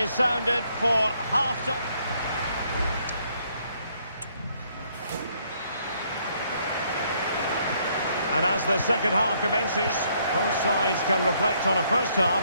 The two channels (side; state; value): both; inverted; correlation -0.69